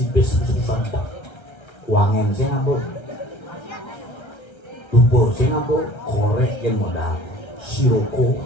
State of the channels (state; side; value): late; right; 1.3 ms